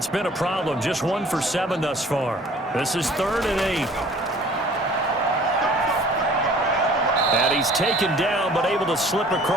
been a problem. Just 1 for 7 thus far. This is 3rd and 8. And he's taken down, but able to slip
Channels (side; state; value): both; normal; correlation 0.51